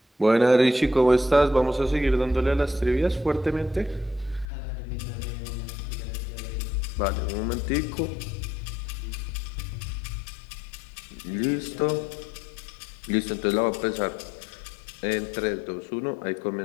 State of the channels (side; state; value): right; drops out; at 4.5 s